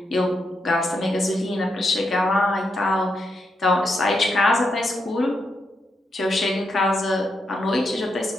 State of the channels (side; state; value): both; normal; correlation 0.82